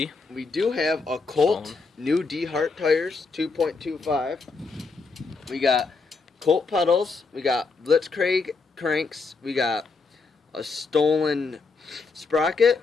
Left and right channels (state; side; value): quieter; right; 4.3 dB